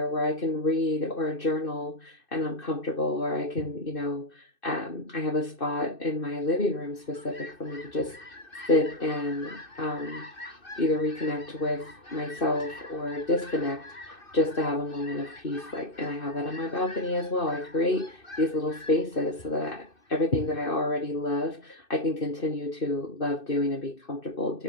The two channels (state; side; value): late; right; 2.6 ms